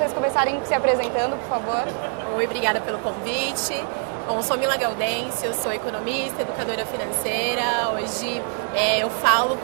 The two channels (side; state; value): left; silent; 63 dB below the other